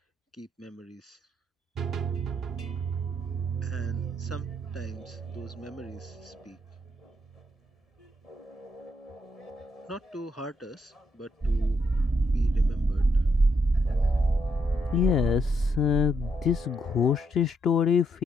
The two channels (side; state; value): both; normal; correlation 0.77